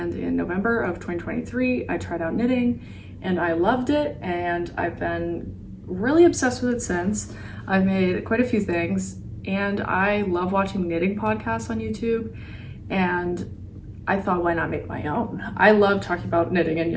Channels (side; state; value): both; identical; correlation 1.00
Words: in November of 2023 I tried out knitting and I loved it, and I've been really obsessed with it since. I've made quite a few things and I love watching knitting podcasts on YouTube, and I thought, why not make my own? I love talking about knitting and